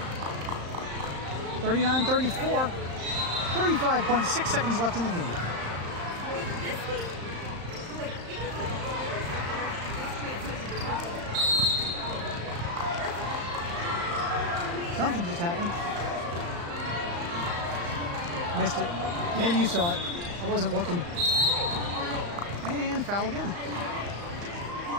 39-34. 35.6 seconds left in the game. Something just happened. Missed it. Maybe you saw it. I wasn't looking. And foul again.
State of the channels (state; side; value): late; left; 35 ms